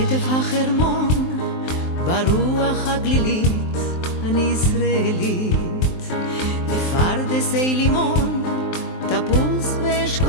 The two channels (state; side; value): late; right; 23 ms